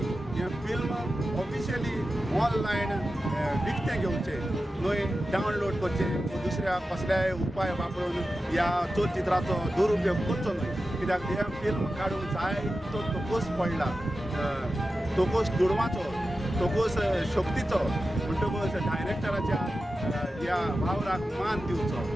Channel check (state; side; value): normal; both; correlation 0.93